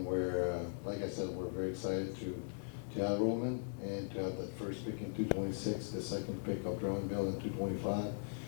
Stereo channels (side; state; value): right; silent; 51 dB below the other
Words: we're, like I said, we're very excited to have Roman and to have that first pick in 226, the second pick of Drummondville in 225,